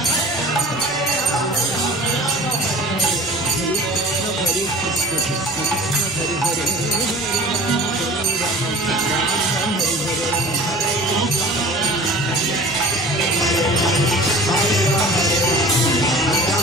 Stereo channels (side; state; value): both; normal; correlation 0.41